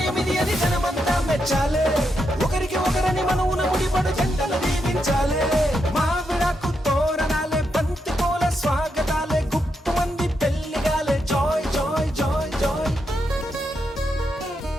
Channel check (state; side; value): normal; both; correlation 0.83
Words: ఇది అని జనమంతా మెచ్చాలే. ఒకరికి ఒకరని మనవున ముడిపడు జంటలు దీవించాలే. మావిడాకు తోరణాలే, బంతి పూల స్వాగతాలే, గుప్పు మంది పెళ్లిగాలే. Joy joy joy joy.